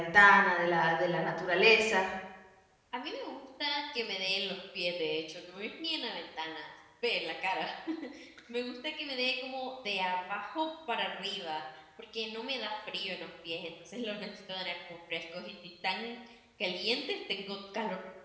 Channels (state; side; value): identical; both; correlation 1.00